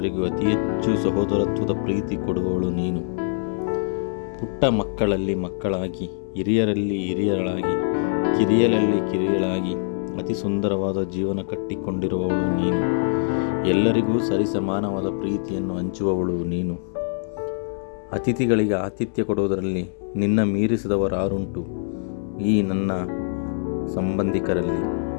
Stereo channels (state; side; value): silent; right; 63 dB below the other